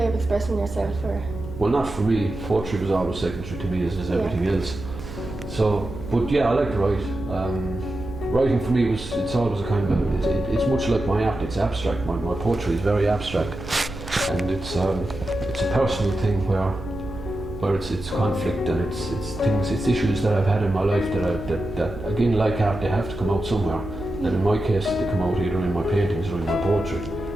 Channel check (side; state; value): right; noise; hum, 12 dB below the sound